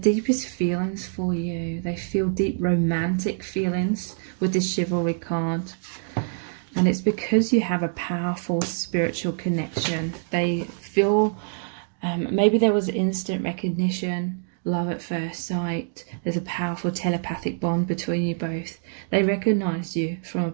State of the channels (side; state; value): left; silent; 62 dB below the other